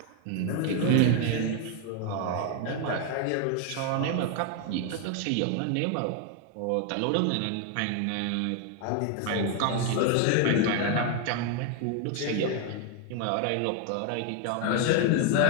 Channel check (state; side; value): different; both; correlation 0.01